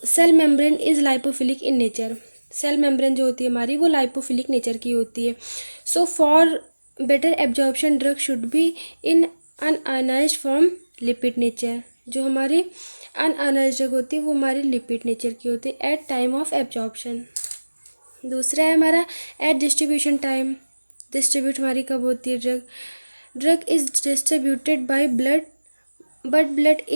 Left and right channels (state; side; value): inverted; both; correlation -1.00